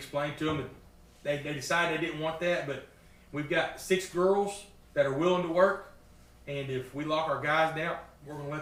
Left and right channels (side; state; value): both; identical; correlation 1.00